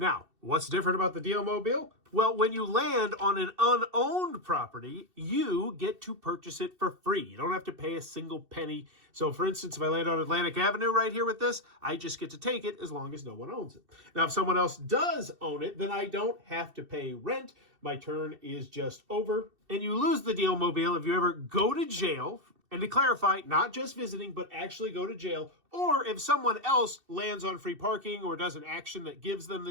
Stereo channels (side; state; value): left; late; 2.7 ms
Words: what's different about the Deal Mobile? Well, when you land on an unowned property, you get to purchase it for free. You don't have to pay a single penny. So, for instance, if I land on Atlantic Avenue right here with this, I just get to take it as long as no one owns it. Now, if someone else does own it, then I don't have to pay rent. My turn is just over. And you lose the Deal Mobile if you ever go to jail. And to clarify, not just visiting, but actually go to jail, or if someone else lands on free parking or does an action that gives them